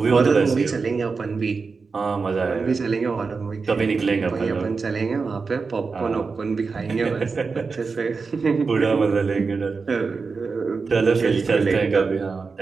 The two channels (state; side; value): quieter; left; 4.7 dB